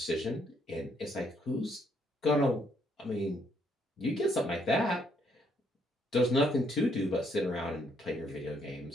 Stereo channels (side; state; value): both; normal; correlation 0.71